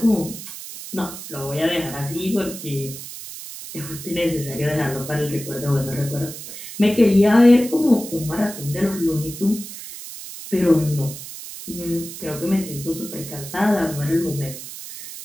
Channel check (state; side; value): noise; right; hiss, 11 dB below the sound